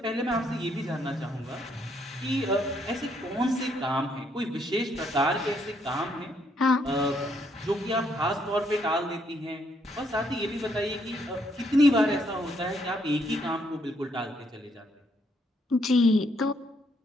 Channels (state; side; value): normal; both; correlation 0.72